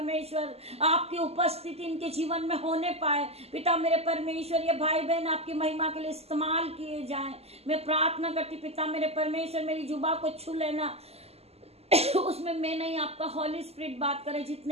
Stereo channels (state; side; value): late; left; 0.29 ms